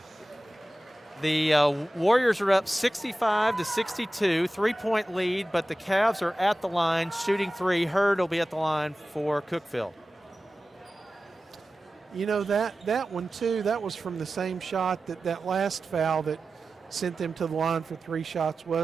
The Warriors are up 65-62, 3-point lead, but the Cavs are at the line shooting 3. Hurd will be at the line for Cookeville. You know, that one too, that was from the same shot that last foul that sent them to the line for 3 shots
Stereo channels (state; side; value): normal; both; correlation 0.95